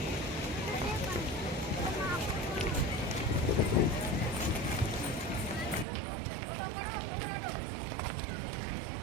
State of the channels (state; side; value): drops out; left; at 5.9 s